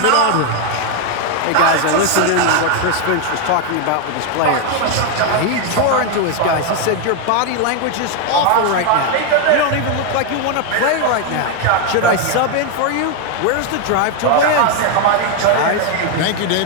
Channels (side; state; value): both; different; correlation 0.01